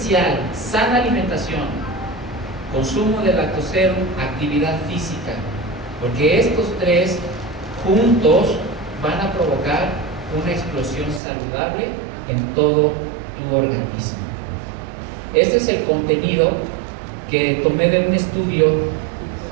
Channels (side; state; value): left; drops out; at 11.2 s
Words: sana alimentación, consumo de lactoserum, actividad física, porque estos tres juntos van a provocar una explosión saludable en todo tu organismo. Este es el contenido que tomé de un estudio,